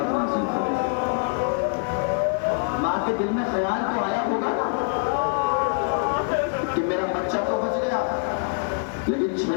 نازل کرے۔ ماں کے دل میں خیال تو آیا ہوگا کہ میرا بچہ تو بچ گیا، لیکن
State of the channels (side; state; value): right; silent; 60 dB below the other